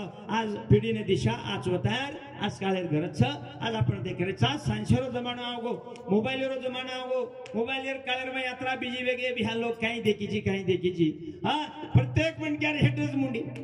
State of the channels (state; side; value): identical; both; correlation 1.00